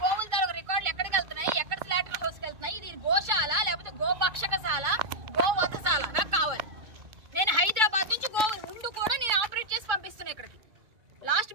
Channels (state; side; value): late; left; 2.2 ms